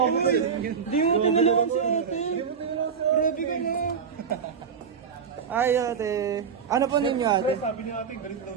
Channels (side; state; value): left; quieter; 6.5 dB